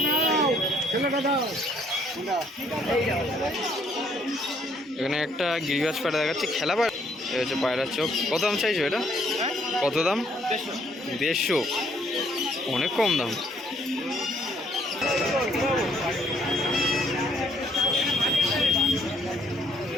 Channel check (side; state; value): both; normal; correlation 0.66